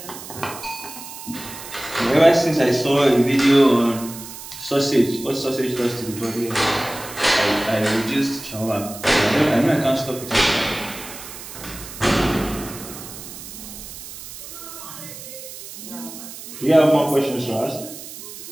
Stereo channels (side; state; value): right; noise; hiss, 13 dB below the sound